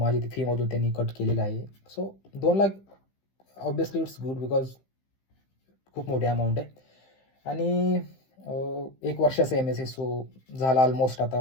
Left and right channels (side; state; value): right; late; 15 ms